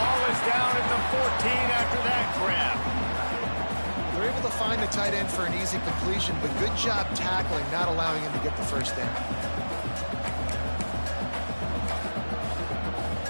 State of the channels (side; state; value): both; inverted; correlation -1.00